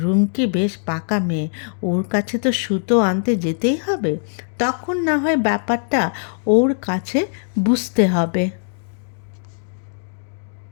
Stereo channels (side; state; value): right; silent; 65 dB below the other